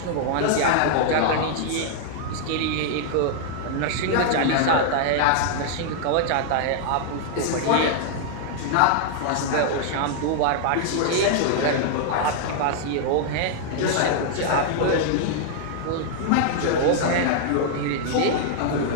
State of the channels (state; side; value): different; both; correlation -0.01